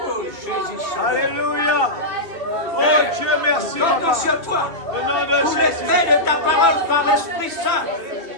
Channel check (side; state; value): left; late; 2.7 ms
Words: Alléluia. Oh Dieu, merci Papa. Au nom de Jésus. L'effet de ta parole par l'Esprit Saint,